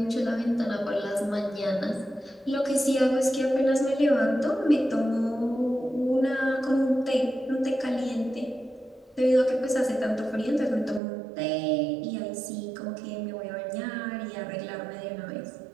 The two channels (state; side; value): drops out; left; at 11.0 s